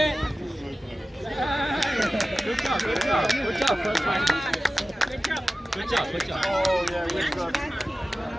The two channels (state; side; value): normal; both; correlation 0.95